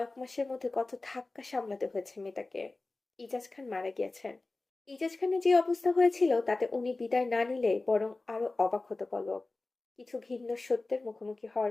মাসের মধ্যে কত ধাক্কা সামলাতে হয়েছে মেয়েটাকে। ইজাজ খান মারা গিয়েছেন। ইজাজ খানের যে অবস্থা হয়েছিল তাতে উনি বিদায় না নিলে বরং আরো অবাক হতো পলক। কিছু ঘিন্ন সত্যের মুখোমুখি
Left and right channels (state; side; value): quieter; right; 3.2 dB